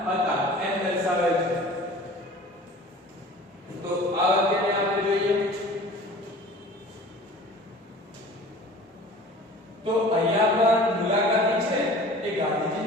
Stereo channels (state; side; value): normal; both; correlation 0.43